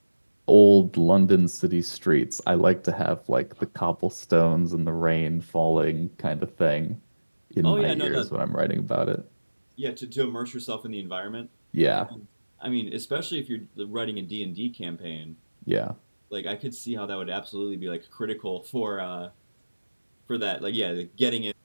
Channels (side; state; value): both; inverted; correlation -1.00